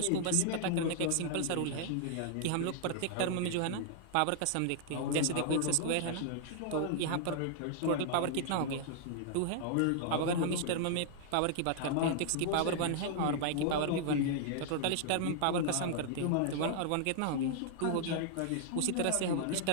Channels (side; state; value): both; different; correlation -0.01